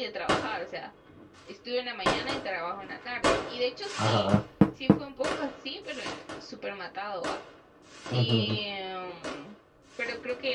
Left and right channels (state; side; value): identical; both; correlation 1.00